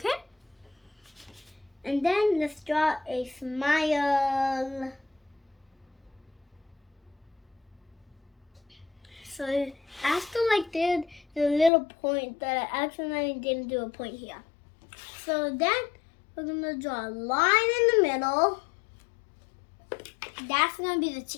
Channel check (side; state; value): right; drops out; at 11.7 s